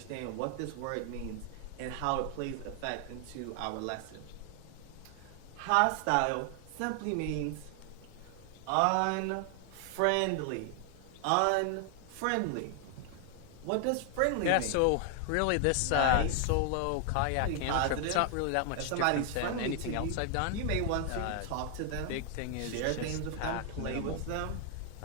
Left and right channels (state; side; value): different; both; correlation 0.00